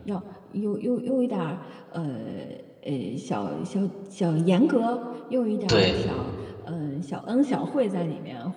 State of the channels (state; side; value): identical; both; correlation 1.00